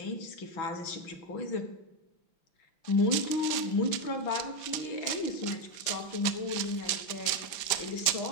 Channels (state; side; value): late; right; 5.8 ms